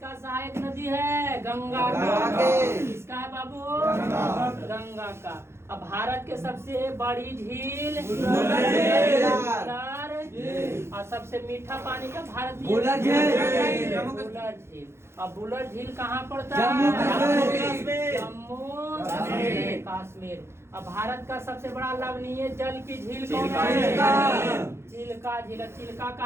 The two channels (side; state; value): left; late; 0.12 ms